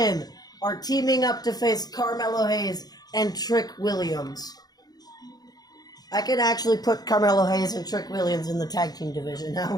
are teaming up to face Carmelo Hayes and Trick Williams. I can actually put Carmelo Hayes and Trick Williams in the tag team division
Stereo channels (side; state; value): right; late; 0.19 ms